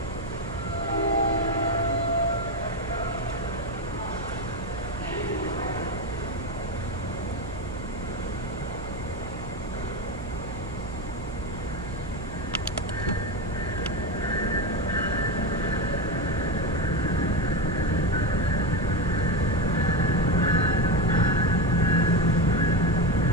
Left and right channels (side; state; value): right; noise; hum, 11 dB below the sound